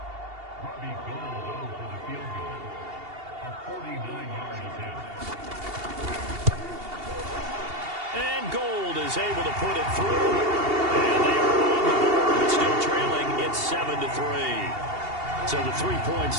Able to put it through, and they are on the board. It's still trailing. It's 7-3. So the 3 points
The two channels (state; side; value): late; left; 2.8 ms